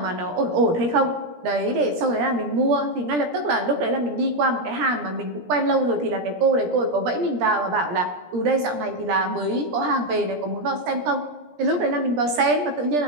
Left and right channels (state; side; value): late; left; 17 ms